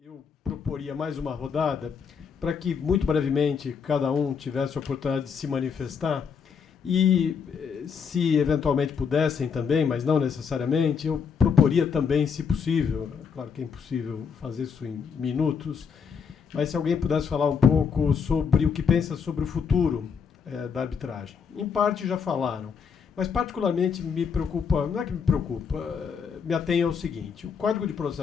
Eu proporia mais uma rodada para que, muito brevemente, cada um tivesse a oportunidade de se manifestar e, se eventualmente pudessem também, mas não necessariamente, eu proporia também, se possível, claro que é impossível fazer isso em minutos, mas se alguém pudesse falar um pouco sobre o que pensa sobre o futuro da arbitragem. Em parte já falaram, mas particularmente me preocupa, não é que me preocupa, me atém ao seguinte: o Código de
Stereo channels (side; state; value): right; quieter; 6.3 dB